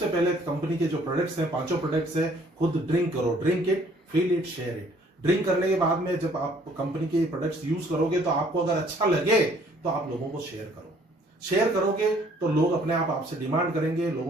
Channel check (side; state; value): both; normal; correlation 0.59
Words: पहले कंपनी के जो प्रोडक्ट्स हैं, 5 प्रोडक्ट्स हैं, खुद ड्रिंक करो। Drink it, feel it, share it. Drink करने के बाद में जब आप कंपनी के प्रोडक्ट्स यूज करोगे तो आपको अगर अच्छा लगे तो आप लोगों को शेयर करो। शेयर करोगे तो लोग अपने आप आपसे डिमांड करेंगे,